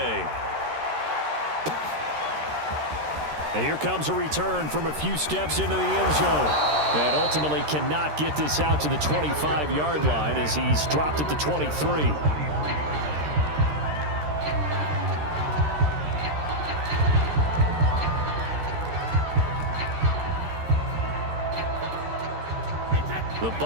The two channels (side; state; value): left; late; 13 ms